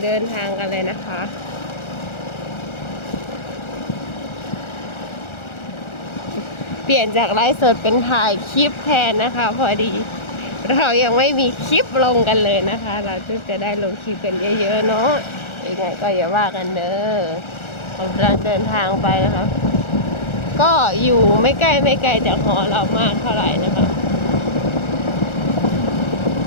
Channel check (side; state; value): right; late; 1.4 ms